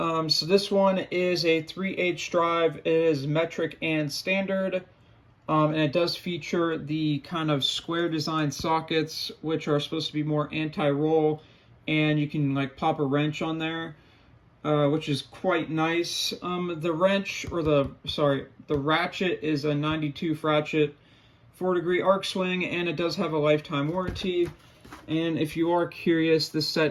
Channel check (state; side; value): identical; both; correlation 1.00